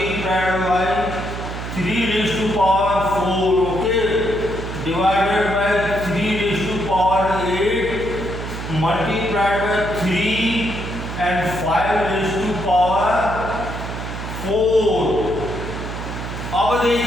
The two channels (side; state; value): right; noise; hum, 7 dB below the sound